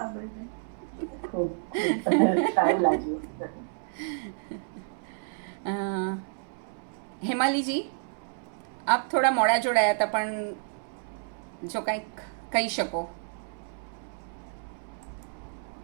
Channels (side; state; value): left; silent; 58 dB below the other